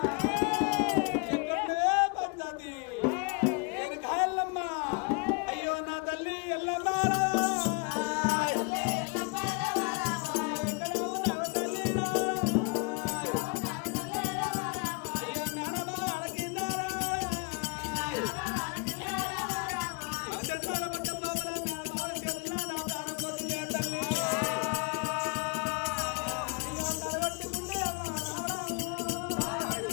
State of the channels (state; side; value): quieter; right; 31.5 dB